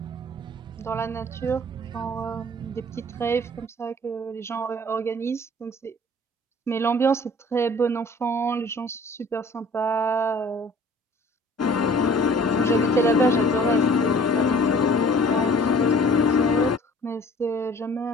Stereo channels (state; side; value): normal; both; correlation 0.51